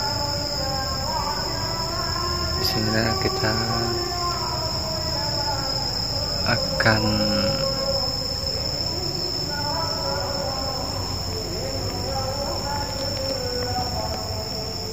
di sini kita akan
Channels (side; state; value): both; identical; correlation 1.00